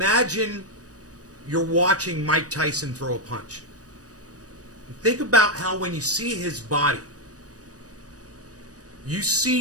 you're watching Mike Tyson throw a punch. think about how when you see his body, you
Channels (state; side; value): late; left; 0.67 ms